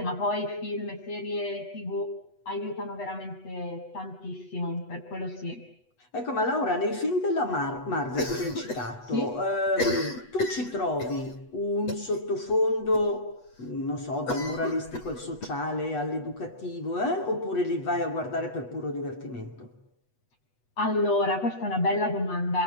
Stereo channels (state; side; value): late; right; 8.1 ms